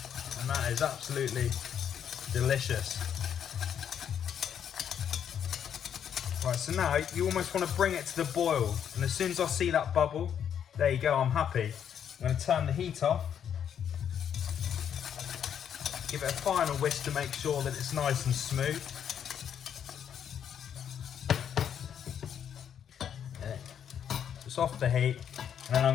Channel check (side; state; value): right; quieter; 8.7 dB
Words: and that is absolutely delicious. Right, so now you almost want to bring it to the boil, and as soon as I see that bubble, there you go, I'm happy. I'm going to turn the heat off, give it a final whisk to make sure that it's nice and smooth. Just off the heat. And then